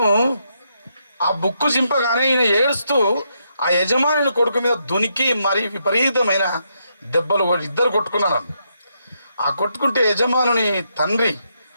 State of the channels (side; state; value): both; inverted; correlation -0.79